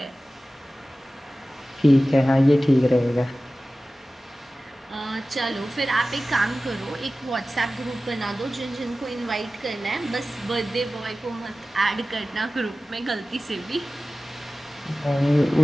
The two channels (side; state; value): both; normal; correlation 0.96